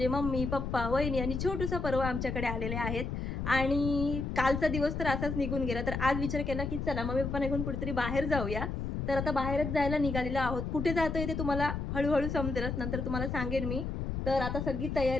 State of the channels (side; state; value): left; noise; rumble, 3 dB below the sound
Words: मम्मी, पप्पा, वहिनी आणि छोटूसा पर्व आमच्याकडे आलेले आहेत. आणि कालचा दिवस तर असाच निघून गेला. तर आज विचार केला, की चला मम्मी-पप्पा निघून कुठेतरी बाहेर जाऊया. तर आता बाहेरच जायला निघालेलो आहोत. कुठे जातोय ते तुम्हाला हळू-हळू समजेलच. नंतर तुम्हाला सांगेन मी. तर आता सगळी